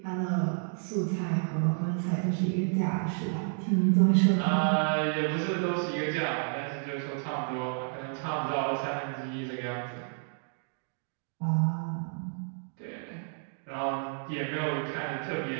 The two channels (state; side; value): silent; left; 57 dB below the other